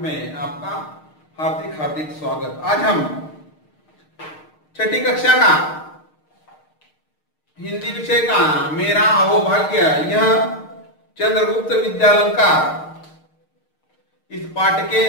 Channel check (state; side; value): late; right; 6.5 ms